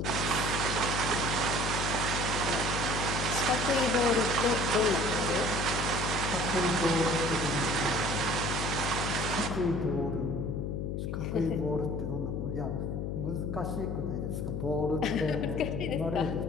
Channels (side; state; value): left; noise; hum, 2 dB below the sound